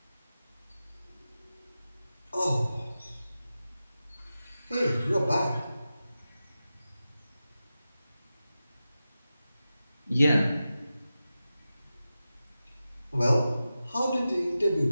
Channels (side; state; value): both; inverted; correlation -0.93